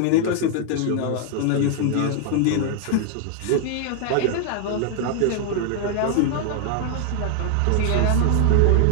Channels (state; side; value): different; both; correlation 0.00